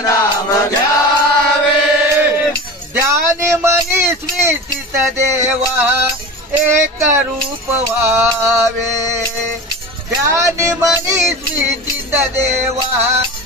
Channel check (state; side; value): normal; both; correlation 0.30